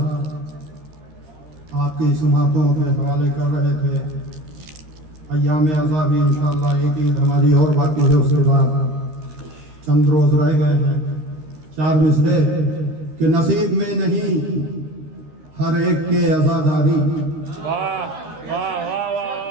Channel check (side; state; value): left; late; 13 ms